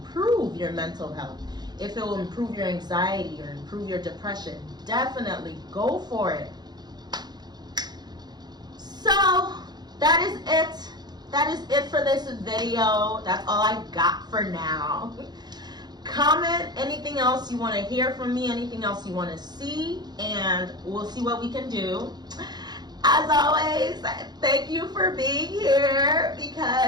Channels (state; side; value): late; left; 0.20 ms